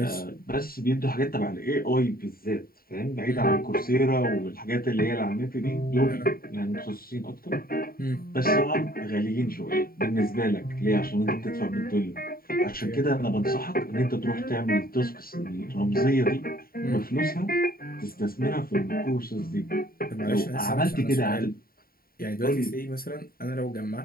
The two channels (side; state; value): right; late; 0.43 ms